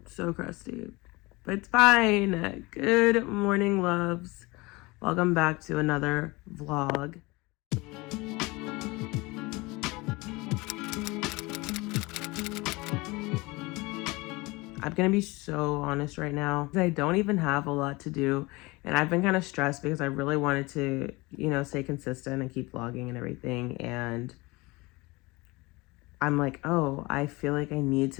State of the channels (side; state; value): right; quieter; 23.6 dB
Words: so crusty, but it's fine. Good morning, loves. Welcome back to another vlog. I'm gonna be so honest right now. I don't even have a lot to do, and I've been kind of stressed because I really wanted to, stay consistent and keep vlogging and everything. And I'm like, oh, I feel like I need